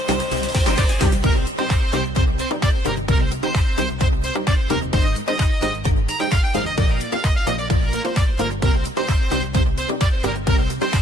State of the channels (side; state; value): both; normal; correlation 0.71